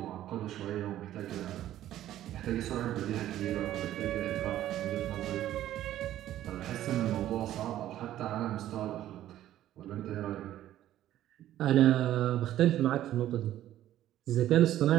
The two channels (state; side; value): quieter; left; 12.9 dB